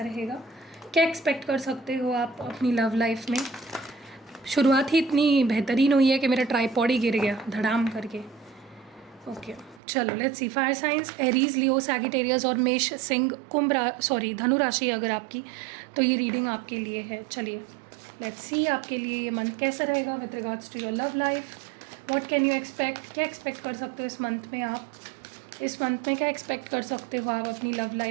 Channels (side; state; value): left; drops out; at 9.8 s